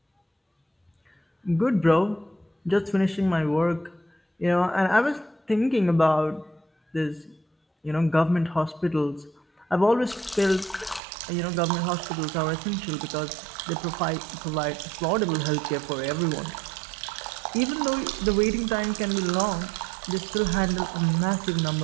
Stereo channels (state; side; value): drops out; left; at 11.0 s